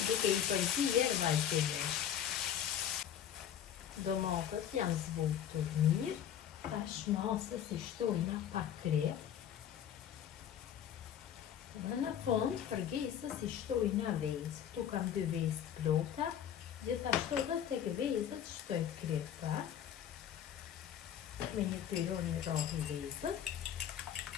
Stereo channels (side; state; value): right; quieter; 9.6 dB